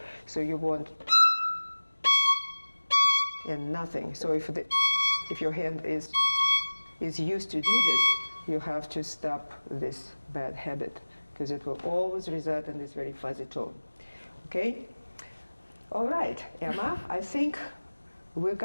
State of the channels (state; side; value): inverted; both; correlation -1.00